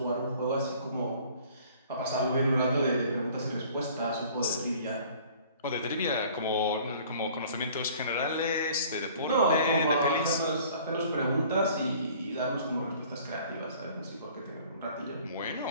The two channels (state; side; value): inverted; both; correlation -0.51